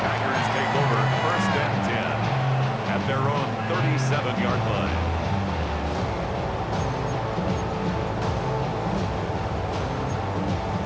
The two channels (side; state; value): both; identical; correlation 1.00